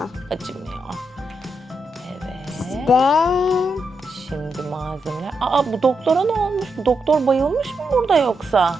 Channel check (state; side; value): normal; both; correlation 0.83